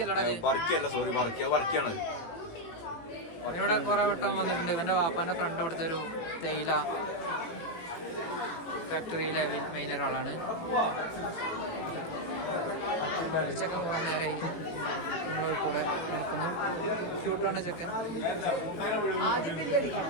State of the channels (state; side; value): late; right; 18 ms